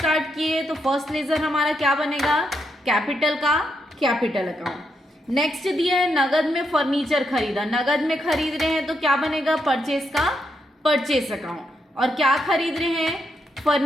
किए तो फर्स्ट लेज़र हमारा क्या बनेगा, कैपिटल का कैपिटल अकाउंट। नेक्स्ट दिया है नगद में फर्नीचर खरीदा, नगद में खरीद रहे हैं तो क्या बनेगा, परचेस का परचेस अकाउंट। और क्या खरीद रहे हैं,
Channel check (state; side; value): normal; both; correlation 0.80